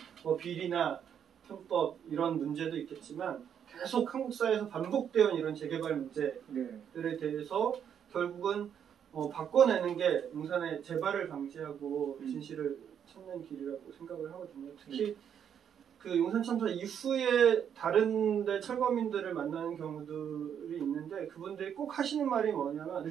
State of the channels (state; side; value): quieter; left; 8.5 dB